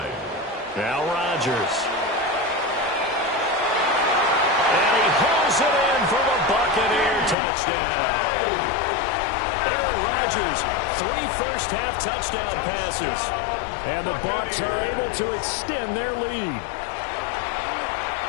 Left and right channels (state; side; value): drops out; right; at 7.4 s